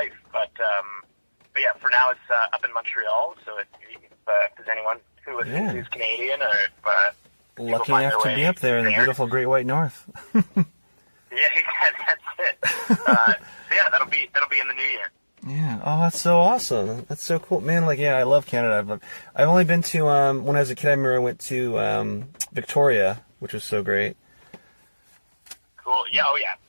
but yeah, for now it's up in Montreal. So if there's anyone who listens who's Canadian or lucky enough to be up there in the beautiful Great White North. Yeah, that's it. So yeah, that'll be in the new year. Yeah. Oh, that's so awesome. That's so cool, man. Like, yeah, I love Canada. I've only been to when I was a kid. I remember I went to Victoria, which was so great. Cool. Yeah. Oh, yeah.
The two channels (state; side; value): inverted; both; correlation -1.00